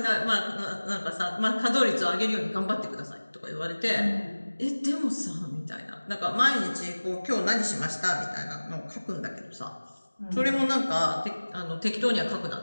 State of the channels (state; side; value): inverted; both; correlation -1.00